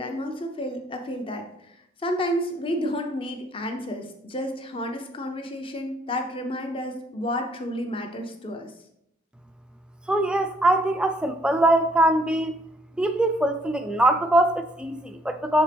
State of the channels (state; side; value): normal; both; correlation 0.67